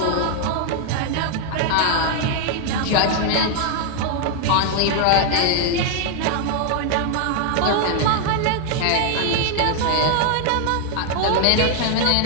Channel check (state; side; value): different; both; correlation 0.00